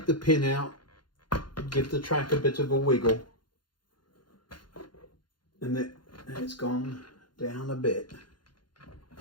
the pin out, give the track a bit of a wiggle, and it's gone down a bit.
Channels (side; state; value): right; late; 0.71 ms